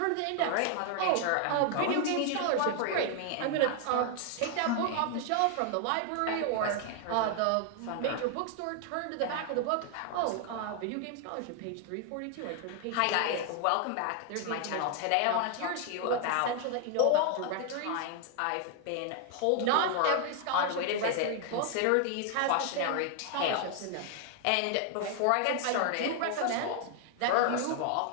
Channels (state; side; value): different; both; correlation 0.00